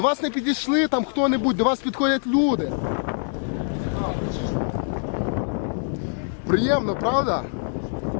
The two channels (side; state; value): right; silent; 63 dB below the other